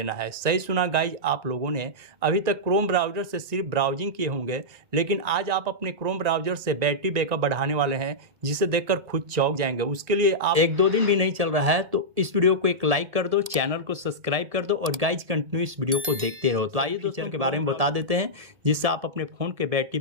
है। सही सुना गाइज, आप लोगों ने अभी तक क्रोम ब्राउज़र से सिर्फ ब्राउजिंग किए होंगे, लेकिन आज आप अपने क्रोम ब्राउज़र से बैटरी बैकअप बढ़ाने वाले हैं जिसे देखकर खुद चौंक जाएंगे। उसके लिए आप 1-2 दिन भी नहीं चल रहा है तो इस वीडियो को एक लाइक कर दो, चैनल को सब्सक्राइब कर दो और गाइज कंटिन्यू इस वीडियो को देखते रहो। तो आइए फीचर के बारे में बता देते हैं जिससे आप अपने फ़ोन के बैटरी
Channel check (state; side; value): late; left; 1.7 ms